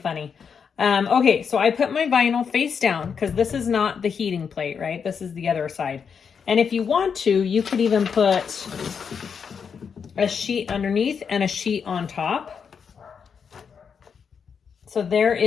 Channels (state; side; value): quieter; right; 6.6 dB